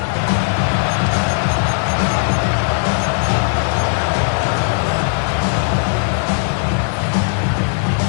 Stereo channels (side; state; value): right; silent; 67 dB below the other